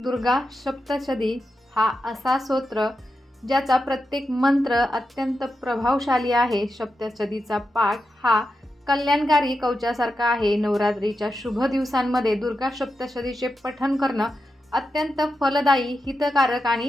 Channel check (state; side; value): normal; both; correlation 0.88